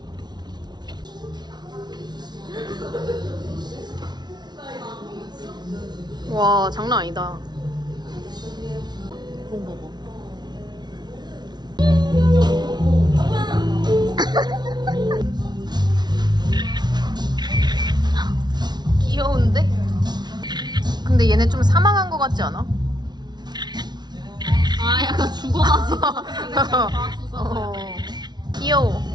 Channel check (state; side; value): late; left; 0.20 ms